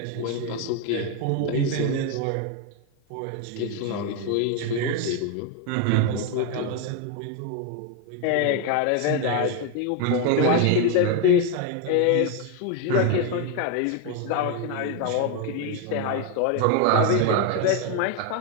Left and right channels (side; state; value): both; different; correlation 0.01